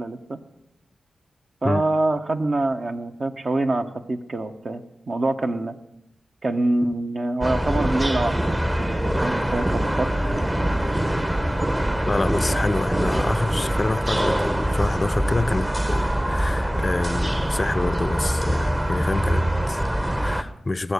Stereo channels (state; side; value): normal; both; correlation 0.97